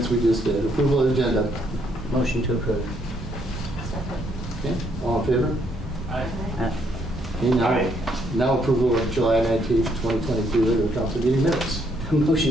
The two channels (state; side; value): normal; both; correlation 0.71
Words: we just did. Approval of agenda. Motion to approve. Okay, all in favor? Aye. Okay, now approval of July 19th, 2023 regular council meeting minutes.